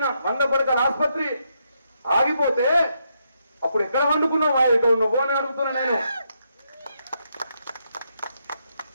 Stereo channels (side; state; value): both; inverted; correlation -0.79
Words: 100 పడకల ఆసుపత్రి ఆగిపోతే అప్పుడు ఎక్కడ వండుకున్నావు మహేష్ గౌడ్ నువ్వు అని అడుగుతున్నా నేను.